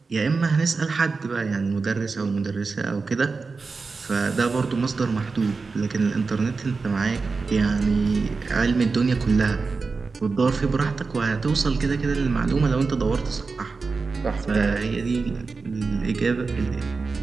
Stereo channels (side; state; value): left; quieter; 4.4 dB